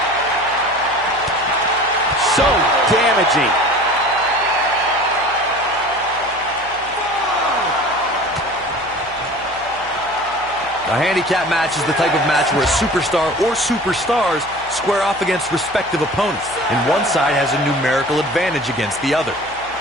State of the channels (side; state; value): left; noise; hum, 22 dB below the sound